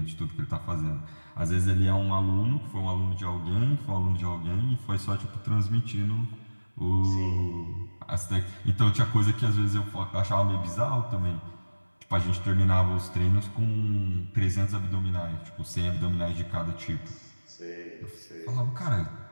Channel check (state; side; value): inverted; both; correlation -1.00